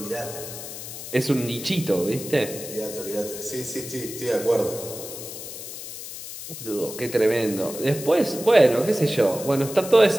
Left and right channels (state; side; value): noise; left; hiss, 10 dB below the sound